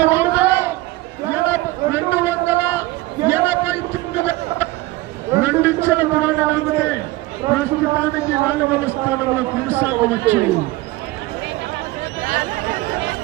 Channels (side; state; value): left; quieter; 19.3 dB